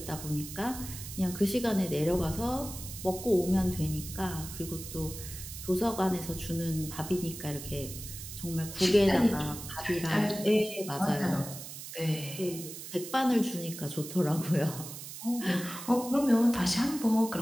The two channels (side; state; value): right; noise; hiss, 11 dB below the sound